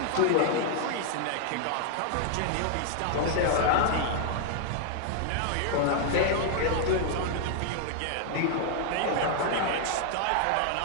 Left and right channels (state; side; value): different; both; correlation 0.00